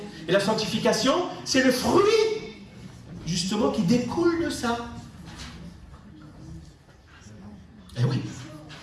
Et la sanctification, c'est le fruit, justement, qui découle de ça. Eh oui.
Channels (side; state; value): both; identical; correlation 1.00